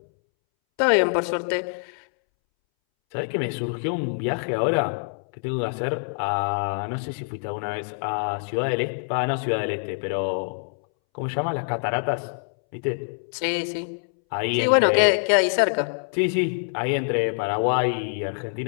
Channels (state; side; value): silent; right; 62 dB below the other